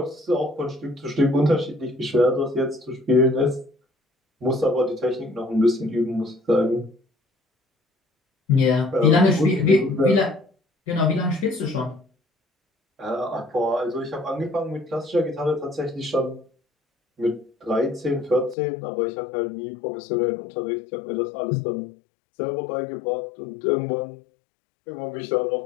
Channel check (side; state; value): right; drops out; at 18.6 s